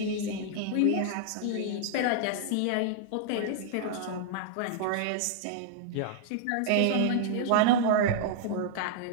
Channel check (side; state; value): both; different; correlation -0.01